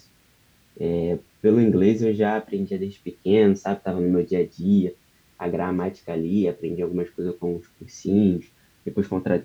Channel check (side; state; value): both; identical; correlation 1.00